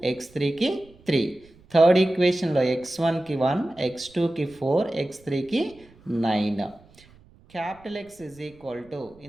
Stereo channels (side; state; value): right; noise; rumble, 27 dB below the sound